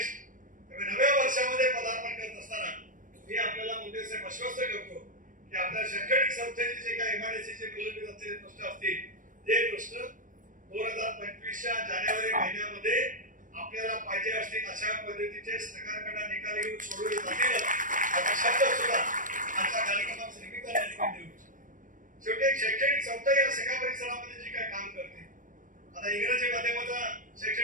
नव्या वर्षामध्ये पदार्पण करत असताना मी आपल्याला मुद्देसे आश्वस्त करतो की आपल्या शैक्षणिक संस्थेचे जे काही MIDCचे प्रलंबित असलेले प्रश्न असतील ते प्रश्न 2025च्या जानेवारी महिन्यामध्ये आपल्याला पाहिजे असतील अशा पद्धतीचे सरकारकडे निकाल घेऊन सोडवले जातील असा शब्द सुद्धा आजच्या कार्यक्रमाच्या निमित्ताने देऊ. शेवटी एक शैक्षणिक संस्था या सगळ्या परिसरामध्ये जी काही काम करते, आता इंग्रजी माध्यमाचा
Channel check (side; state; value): left; late; 0.38 ms